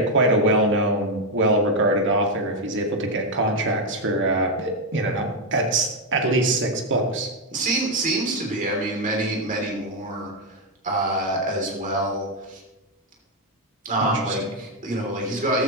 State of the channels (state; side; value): normal; both; correlation 0.04